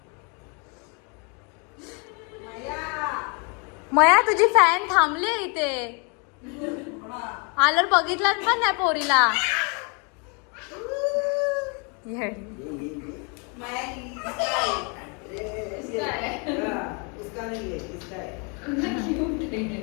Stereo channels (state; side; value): quieter; right; 34.4 dB